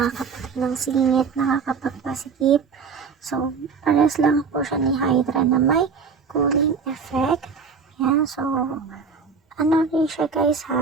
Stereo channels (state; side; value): quieter; left; 5.5 dB